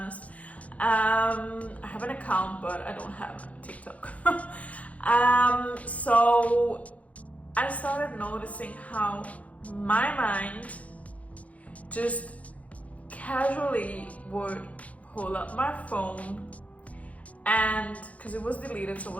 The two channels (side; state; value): right; late; 0.067 ms